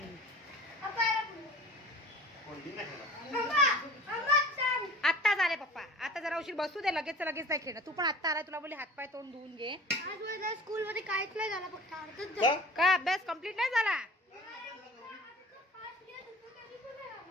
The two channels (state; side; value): normal; both; correlation 0.43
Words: कोणती नाही खेळला. आत्ता झाले पप्पा, आता जरा उशीर बसू दे, लगेच लगेच नाही खेळणं. तू पण आत्ता आलाय, तुला बोलली हातपाय तोंड धुवून घे. आज माझ्या स्कूल मध्ये काहीच नाही झालं, फक्त अर्धच का? झालं. का अभ्यास कम्प्लीट नाही झाला?